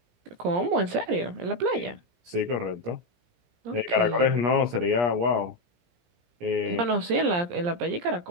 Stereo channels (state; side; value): late; left; 17 ms